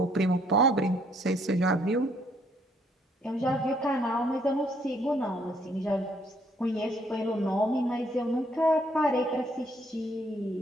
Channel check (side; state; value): both; normal; correlation 0.67